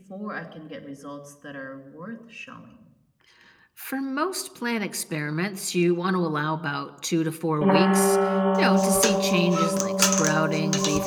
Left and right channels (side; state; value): both; identical; correlation 1.00